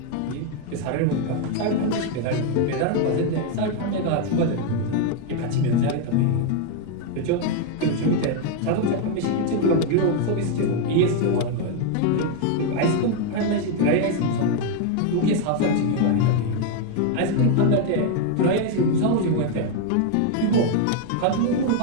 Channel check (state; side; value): different; both; correlation 0.01